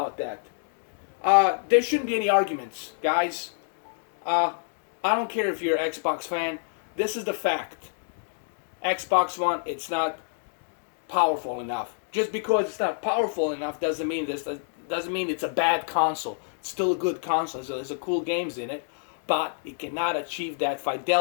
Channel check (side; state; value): right; silent; digital silence